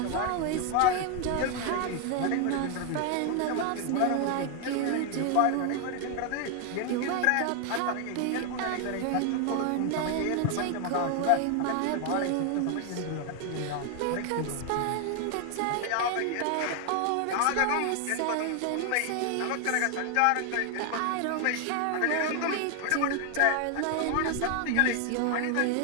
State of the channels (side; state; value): both; different; correlation 0.01